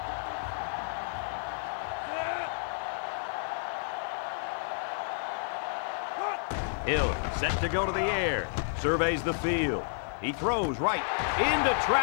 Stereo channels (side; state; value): right; silent; 57 dB below the other